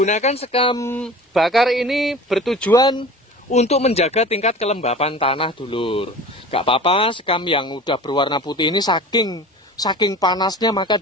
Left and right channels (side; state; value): both; normal; correlation 0.39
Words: sekam bakar ini bertujuan untuk menjaga tingkat kelembapan tanah, dulur. Gak apa-apa, sekam yang udah berwarna putih ini saking panasnya maka